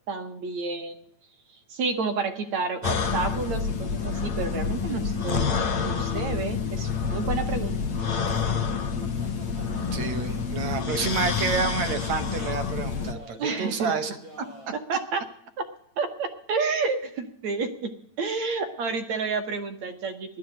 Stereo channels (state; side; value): late; left; 8.9 ms